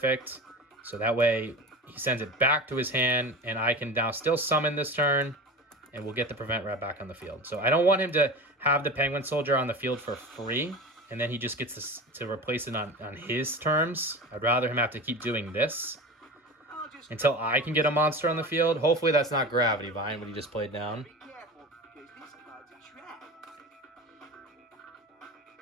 So that way, he sends it back to his hand, and I can now still summon this turn, and we'll get the Prevent Rat back on the field. So I don't want him to have the Penguin Soldier on the field for free, and then he just gets to replace it on his terms. I'd rather him have to keep doing this until I can get a monster on the field. Hopefully that's not Gravity Vine, what he just played down. Be careful, because this card's a trap.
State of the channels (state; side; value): normal; both; correlation 0.30